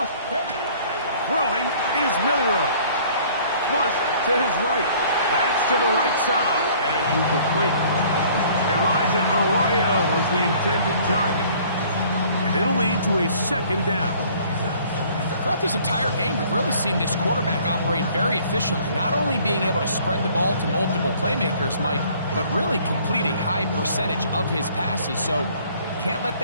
Throwing is Milrow. Flush to his right. That's to the right side. And incomplete. Elijah Arroyo was the intended target. And it'll lead to a 2nd down. Throughout this entire game, we've really seen this quarterback operate very efficiently, not only being able to spread the ball to multiple playmakers, Mike, but really complete a high percentage of his passes. So can't let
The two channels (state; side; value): inverted; both; correlation -0.55